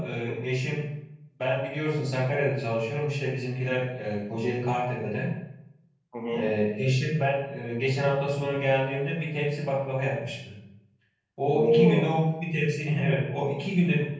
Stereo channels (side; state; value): both; identical; correlation 1.00